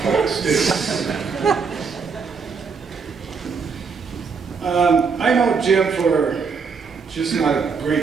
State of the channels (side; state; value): left; quieter; 5.4 dB